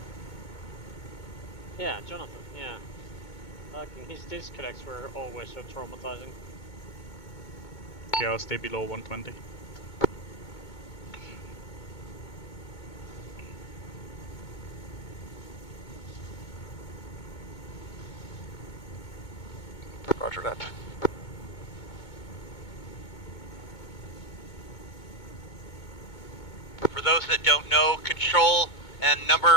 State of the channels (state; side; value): late; right; 2.2 ms